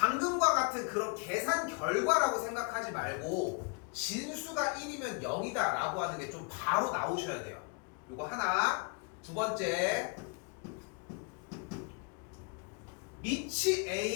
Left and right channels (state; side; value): quieter; right; 34.1 dB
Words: 같은 그런 계산 결과라고 생각하지 말고 진수가 1이면 0이다 라고 하는 게 좀 바로 나오셔야 돼요. 요거 하나. 두 번째 밑이